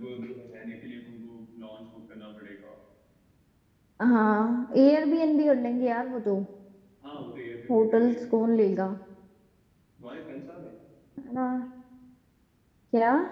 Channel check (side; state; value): both; identical; correlation 1.00